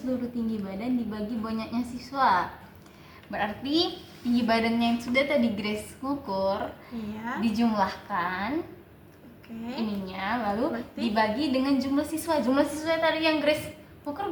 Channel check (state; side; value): identical; both; correlation 1.00